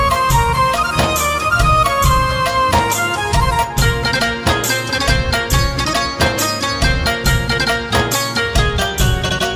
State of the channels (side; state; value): both; identical; correlation 1.00